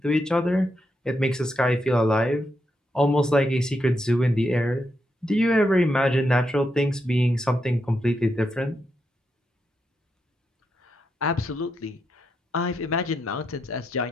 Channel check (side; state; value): both; normal; correlation 0.83